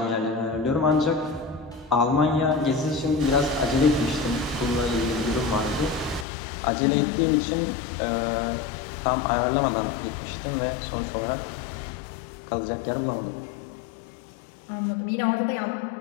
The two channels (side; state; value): right; drops out; at 6.2 s